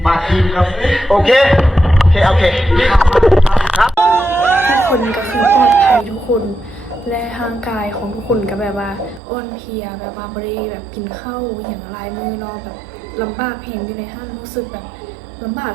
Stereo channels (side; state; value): left; drops out; at 9.2 s